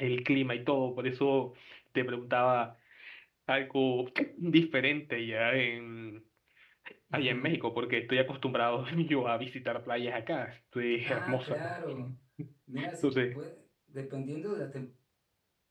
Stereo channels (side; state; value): both; identical; correlation 1.00